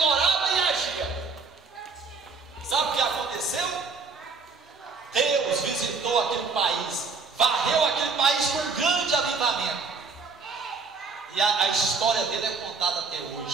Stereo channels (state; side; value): quieter; left; 4.6 dB